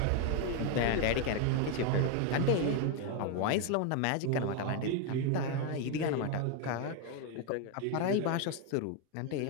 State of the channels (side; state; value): both; different; correlation 0.01